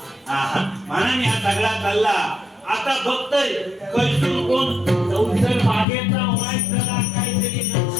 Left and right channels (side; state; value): right; drops out; at 5.9 s